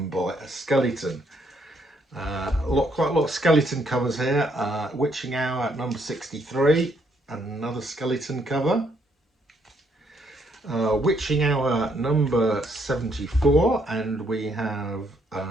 by a skeleton. Quite a lot of skeleton covers here. Witching Hour at number 63, another skeleton cover. Witching Hour number 74, and we have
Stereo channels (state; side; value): normal; both; correlation 0.71